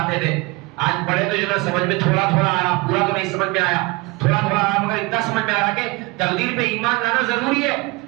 تھے، آج پڑھے تو جو نا سمجھ میں تھوڑا تھوڑا آیا، پورا تو نہیں سمجھ میں آیا، تھوڑا تھوڑا آیا، مگر اتنا سمجھ میں آ رہا کہ تقدیر پہ ایمان لانا ضروری ہے،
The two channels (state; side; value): quieter; left; 24.3 dB